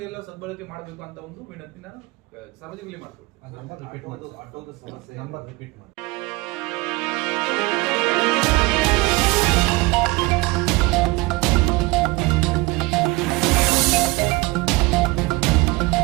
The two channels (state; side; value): quieter; left; 23.0 dB